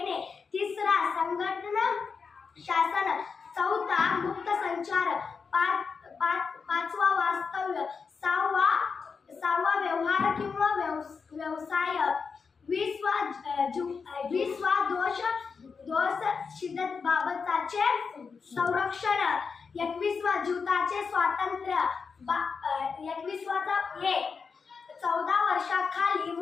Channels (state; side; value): quieter; right; 5.4 dB